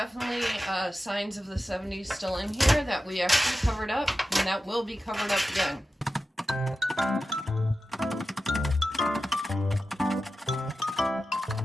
signs of the 70s still in here that we actually covered up, and that will be covered up again.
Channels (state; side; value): normal; both; correlation 0.92